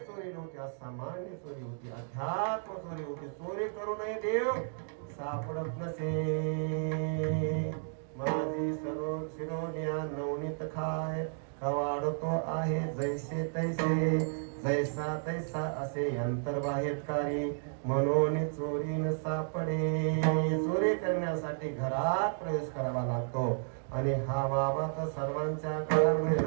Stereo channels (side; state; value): left; silent; digital silence